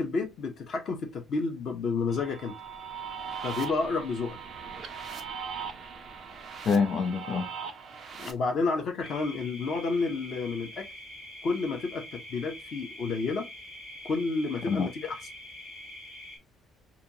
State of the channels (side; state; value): right; quieter; 3.3 dB